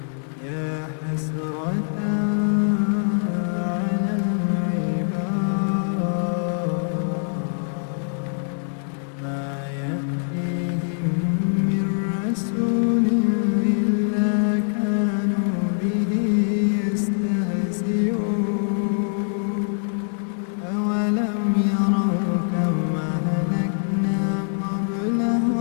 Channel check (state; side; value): silent; right; 63 dB below the other